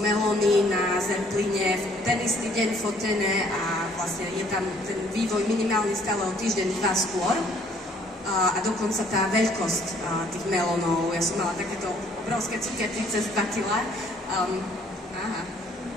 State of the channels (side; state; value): both; normal; correlation 0.61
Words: melóny na Zerpline, ten istý deň fotené, a vlastne je tam ten vývoj minimálne stále o týždeň, 2 skôr. A dokonca tá veľkosť tých melónov, ja som mala takéto obrovské cukiernice z 2 kg.